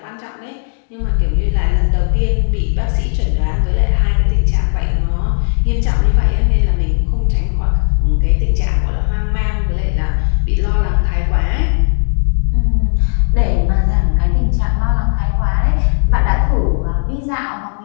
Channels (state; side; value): silent; right; 59 dB below the other